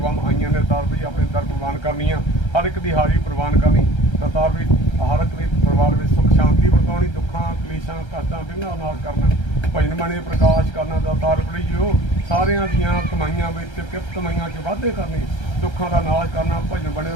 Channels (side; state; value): right; late; 1.3 ms